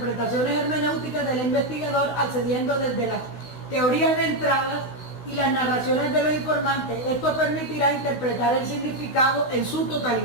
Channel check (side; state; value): right; late; 16 ms